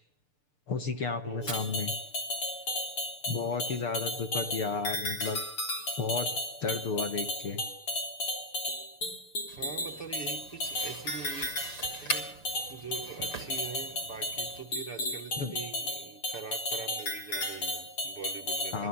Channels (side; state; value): right; late; 6.8 ms